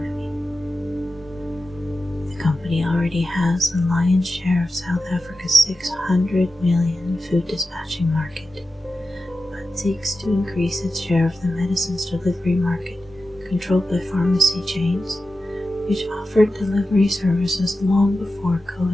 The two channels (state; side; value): normal; both; correlation 0.92